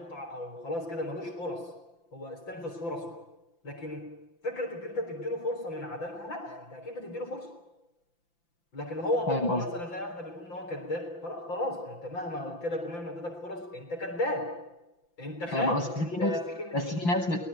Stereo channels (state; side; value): late; right; 5.9 ms